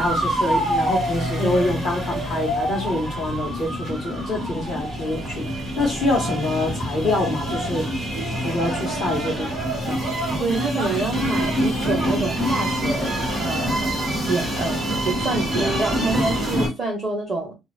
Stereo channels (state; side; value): normal; both; correlation 0.71